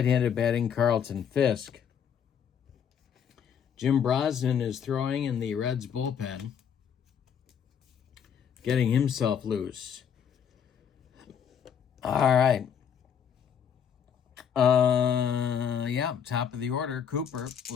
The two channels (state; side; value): quieter; right; 7.9 dB